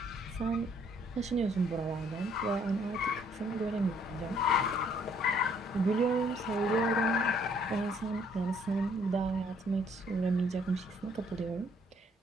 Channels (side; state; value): both; normal; correlation 0.64